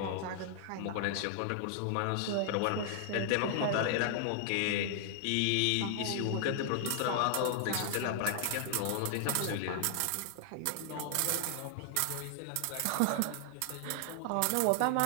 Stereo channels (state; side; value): different; both; correlation 0.00